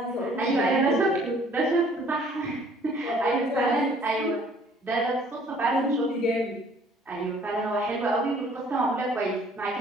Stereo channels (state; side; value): normal; both; correlation 0.57